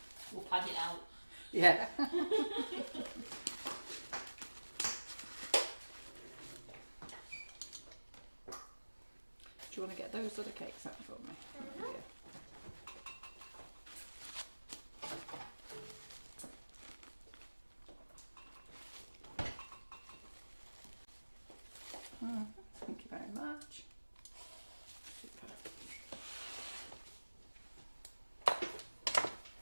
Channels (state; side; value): inverted; both; correlation -1.00